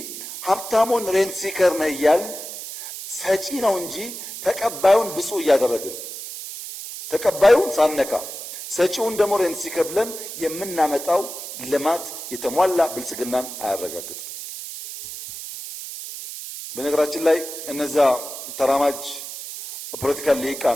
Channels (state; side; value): noise; right; hiss, 9 dB below the sound